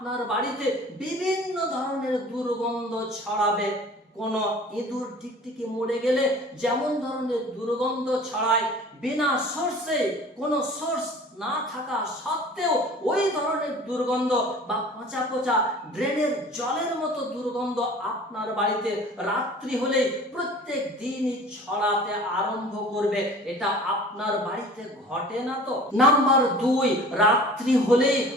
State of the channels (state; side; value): normal; both; correlation 0.45